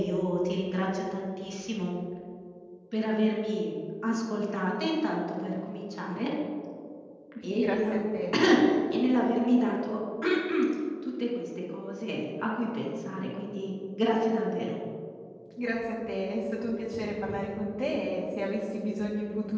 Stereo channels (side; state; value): both; identical; correlation 1.00